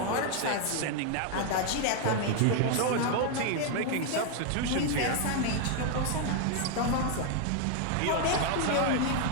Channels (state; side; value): different; both; correlation 0.00